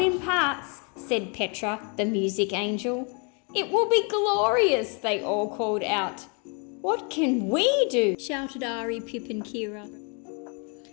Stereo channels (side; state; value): right; quieter; 35.8 dB